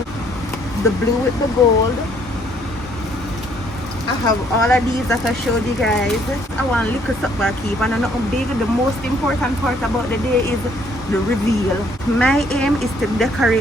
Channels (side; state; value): both; normal; correlation 0.65